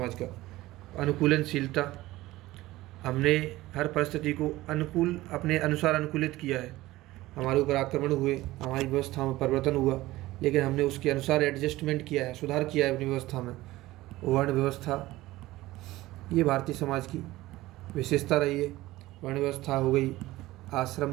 का। अनुकूलनशीलता, हमने हर परिस्थिति को अनुकूल अपने अनुसार अनुकूलित किया है। हमारे ऊपर आक्रमण हुए, हमारी व्यवस्था में परिवर्तन हुआ, लेकिन हमने उसके अनुसार एडजस्टमेंट किया है, सुधार किया है अपनी व्यवस्था में। वर्ण व्यवस्था, ये भारतीय समाज की विशेषता रही है। वर्ण व्यवस्था हो गई, आश्रम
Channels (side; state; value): left; quieter; 17.6 dB